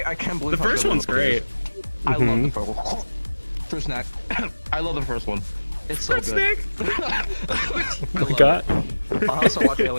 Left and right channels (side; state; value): both; inverted; correlation -1.00